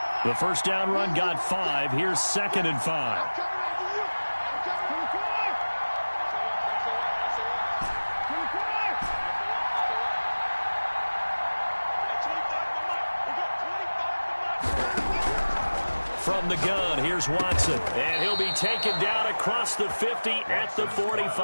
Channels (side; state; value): both; inverted; correlation -1.00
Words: The first down run got 5. Here's 2nd and 5. From the gun, here's Watson. And he'll be taken down across the 50 at the